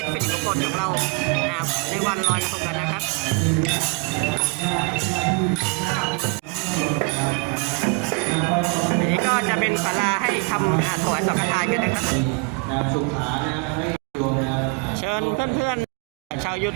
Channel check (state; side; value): quieter; left; 31.6 dB